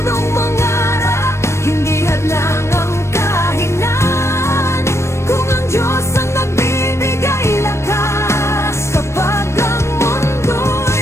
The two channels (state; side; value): late; right; 0.13 ms